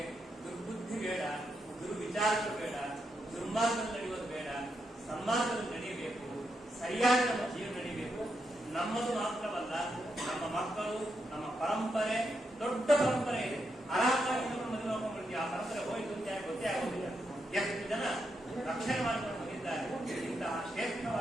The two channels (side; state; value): both; normal; correlation 0.83